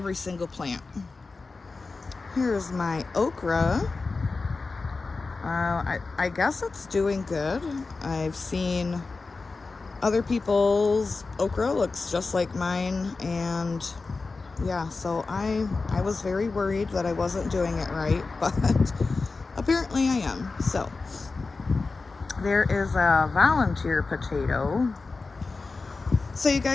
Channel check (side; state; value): right; quieter; 3.9 dB